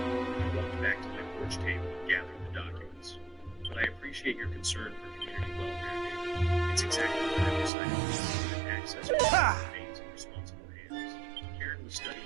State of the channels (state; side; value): drops out; left; at 7.7 s